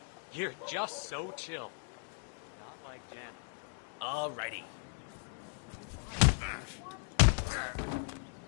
You're just so chill. Not like Jan. Alrighty.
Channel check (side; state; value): right; silent; 53 dB below the other